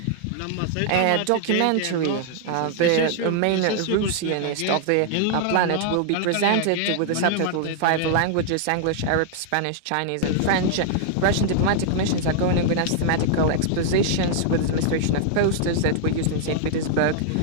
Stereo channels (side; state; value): both; different; correlation -0.01